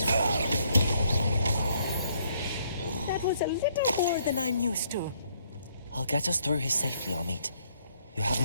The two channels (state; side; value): inverted; both; correlation -0.69